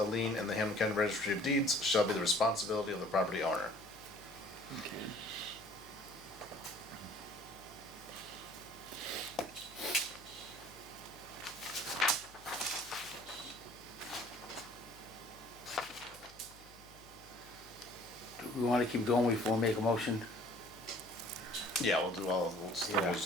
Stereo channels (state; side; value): noise; left; hum, 23 dB below the sound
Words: lien in the Hamilton County Registry of Deeds shall be the responsibility of the property owner. Do we wanna keep going before we make a motion? Yeah, we'll still Yeah. do